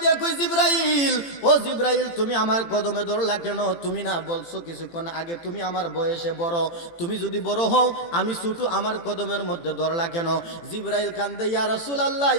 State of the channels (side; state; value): right; late; 18 ms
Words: কই, জিবরাইল, ও জিবরাইল তুমি আমার কদমে ধরলা কেন? তুমি না বলছো কিছুক্ষণ আগে তুমি আমার বয়সে বড়, তুমি যদি বড় হও আমি ছোট, আমার কদমের মধ্যে ধরলা কেন? জিবরাইল কান্দে, ইয়া রাসূলুল্লাহ,